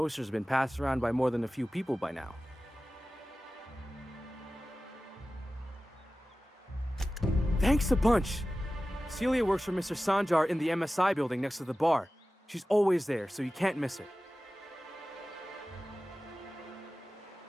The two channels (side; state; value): both; normal; correlation 0.95